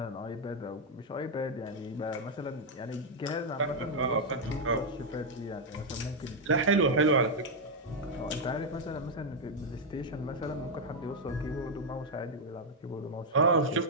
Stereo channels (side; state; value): both; normal; correlation 0.00